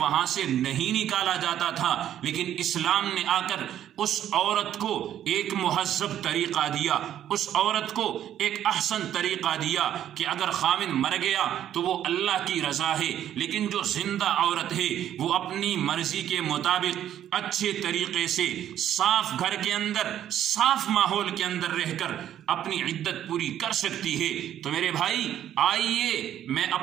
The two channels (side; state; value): left; quieter; 10.9 dB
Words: سے نہیں نکالا جاتا تھا۔ لیکن اسلام نے آ کر اس عورت کو ایک مہذب طریقہ دیا، اس عورت کو ایک احسن طریقہ دیا کہ اگر خاوند مر گیا تو وہ اللہ کی رضا ہے، لیکن جو زندہ عورت ہے وہ اپنی مرضی کے مطابق اچھے طریقے سے صاف گھر کے اندر، صاف ماحول کے اندر رہ کر اپنی عدت پوری کر سکتی ہے۔ تو میرے بھائی، آئیے میں